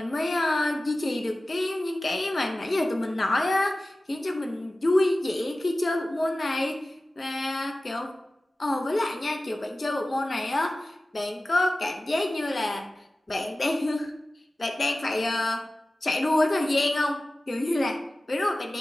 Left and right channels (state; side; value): normal; both; correlation 0.96